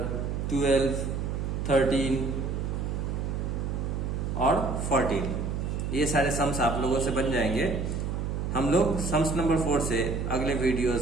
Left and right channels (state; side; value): noise; right; hum, 2 dB below the sound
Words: 12, 13 और 14, ये सारे सम्स आप लोगों से बन जाएंगे। हम लोग सम्स नंबर 4 से अगले